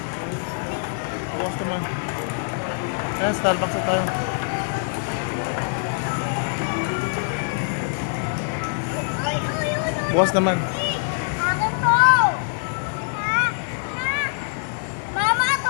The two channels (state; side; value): silent; right; digital silence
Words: Bukas naman. Ayan, Starbucks na tayo. Ay, ay, ay, ay. Bukas naman. Akin po. Ma, ma. Mama,